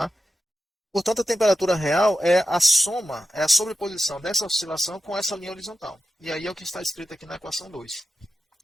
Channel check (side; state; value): both; normal; correlation 0.92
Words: Portanto, a temperatura real é a soma, é a sobreposição dessa oscilação com essa linha horizontal. E aí é o que está escrito aqui na equação 2.